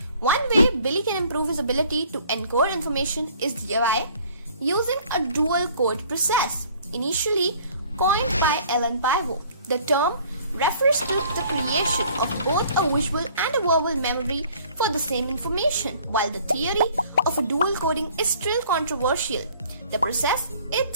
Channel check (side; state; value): both; inverted; correlation -0.55